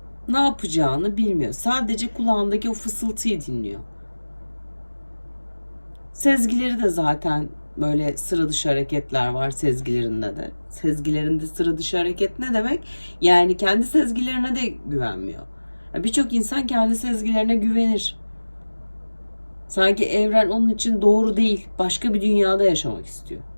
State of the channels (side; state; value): both; inverted; correlation -1.00